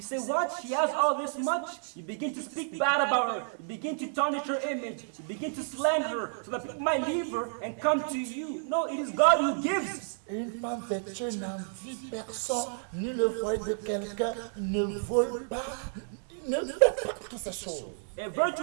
say, what? She has all this much? You begin to speak bad about her. You begin to tarnish her image. You begin to slander her so that people might leave her and come to you. No, it is God who gives. Une femme vertueuse n'envie personne, ni le foyer de quelqu'un, ne vole pas, ne fait pas toutes ces choses. A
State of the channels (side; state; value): left; silent; 57 dB below the other